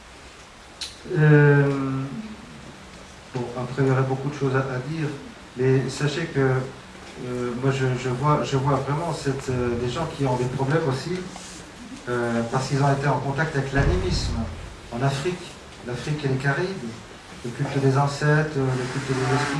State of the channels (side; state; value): both; identical; correlation 1.00